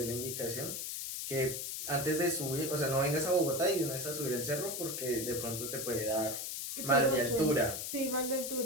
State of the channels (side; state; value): left; noise; hiss, 4 dB below the sound